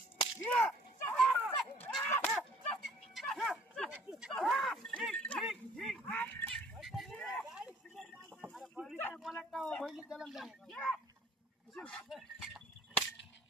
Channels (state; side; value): normal; both; correlation 0.55